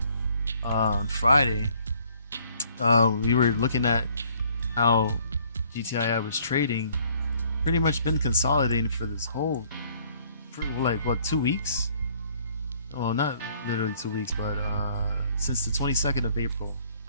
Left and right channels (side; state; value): both; inverted; correlation -0.60